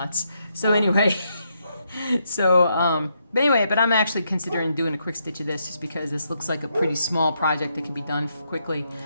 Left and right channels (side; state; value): both; inverted; correlation -0.78